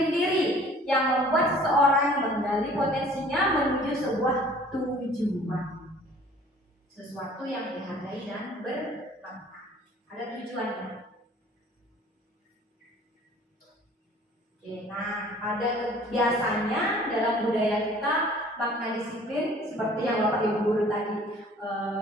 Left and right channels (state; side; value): normal; both; correlation 0.52